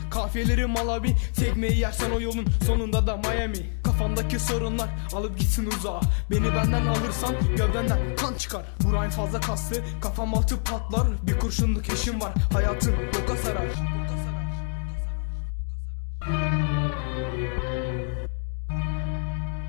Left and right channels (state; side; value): silent; right; 61 dB below the other